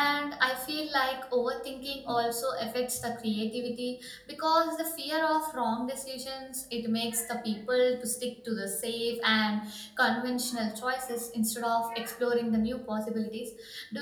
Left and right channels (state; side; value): identical; both; correlation 1.00